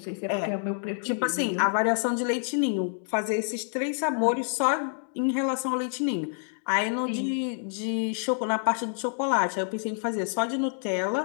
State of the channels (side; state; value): right; silent; digital silence